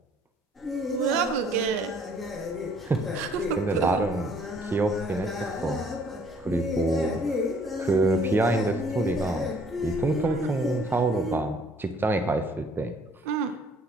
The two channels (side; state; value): both; normal; correlation 0.60